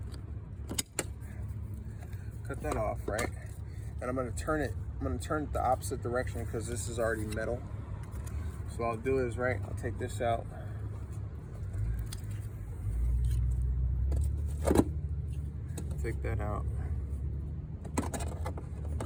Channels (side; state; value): both; identical; correlation 1.00